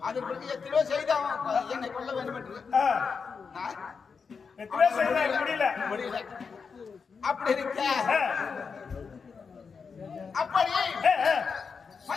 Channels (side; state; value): right; quieter; 5.5 dB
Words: அதற்கு எத்தனையோ செய்த என்னை கொல்ல வேண்டும் என்று முடியல. அப்படி இருக்க அப்படி